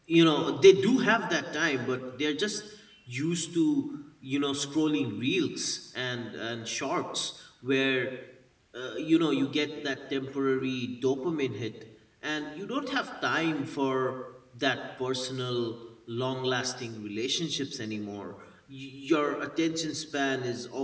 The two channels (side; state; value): both; identical; correlation 1.00